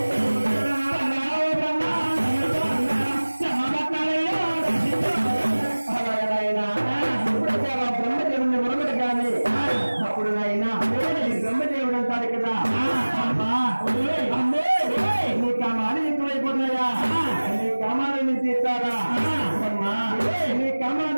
బ్రహ్మదేవుడు అంటాడు కదా నీ కామాలు ఎక్కువైపోతున్నాయా నీ కామాలను తీస్తారా నీ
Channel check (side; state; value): both; inverted; correlation -1.00